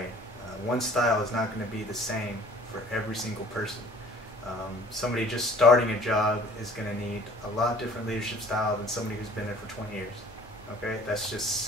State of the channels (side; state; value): both; normal; correlation 0.51